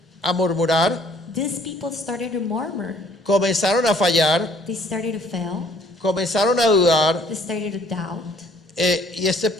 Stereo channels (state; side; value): normal; both; correlation 0.59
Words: a murmurar, these people started to murmur. comenzaron a fallar, They started to fail. comenzaron a dudar, They started to doubt. y este